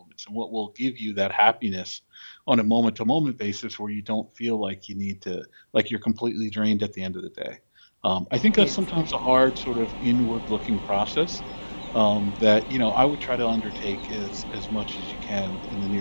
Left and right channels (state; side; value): inverted; both; correlation -1.00